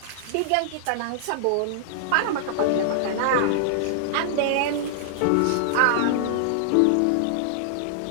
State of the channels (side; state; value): both; different; correlation -0.01